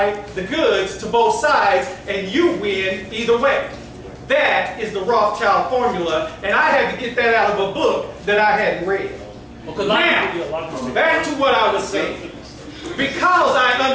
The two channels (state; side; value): identical; both; correlation 1.00